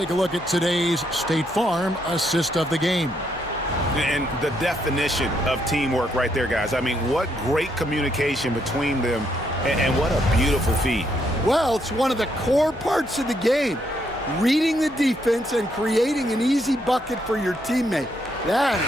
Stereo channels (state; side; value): normal; both; correlation 0.75